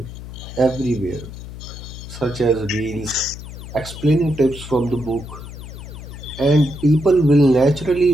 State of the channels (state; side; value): noise; left; hum, 12 dB below the sound